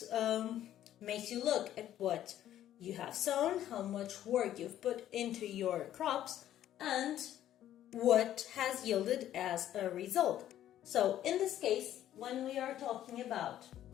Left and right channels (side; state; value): right; quieter; 12.0 dB